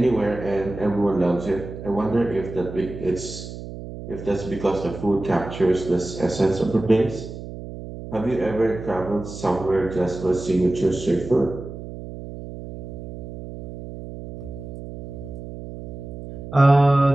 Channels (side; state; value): right; noise; hum, 11 dB below the sound